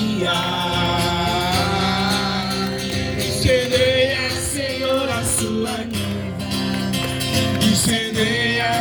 Incendeia, Senhor, a sua noiva.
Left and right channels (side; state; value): both; identical; correlation 1.00